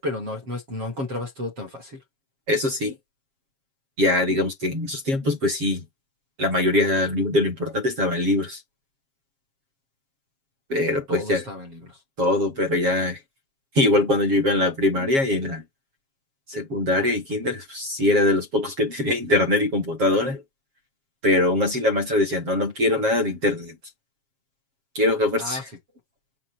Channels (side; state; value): left; late; 7.4 ms